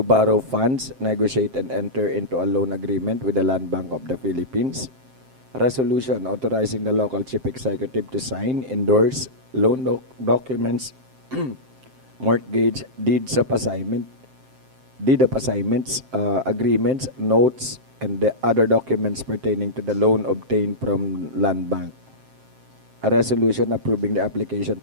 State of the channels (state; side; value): late; left; 7.6 ms